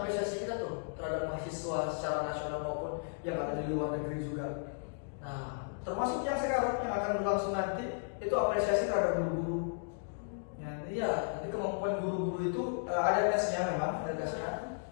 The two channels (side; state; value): right; silent; digital silence